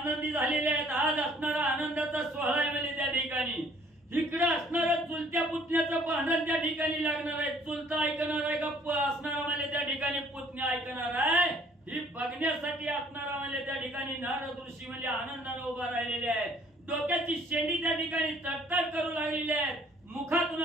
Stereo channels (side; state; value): both; normal; correlation 0.58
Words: झालेले आहेत. आज असणारा आनंदाचा सोहळा आहे म्हणजे त्या ठिकाणी इकडे असणारं चुलत्या पुतण्याचं भांडण त्या ठिकाणी लागणार आहे. चुलता ऐकणार आहे का असणारा म्हणजे त्या ठिकाणी पुतण्या ऐकणार आहे, ही बघण्यासाठी असणारा म्हणजे त्या ठिकाणी नारद ऋषी म्हणजे आनंदाने उभा राहिलेले आहेत. डोक्याची शेंडी त्या ठिकाणी तडतड करू लागलेली आहेत. मुखातून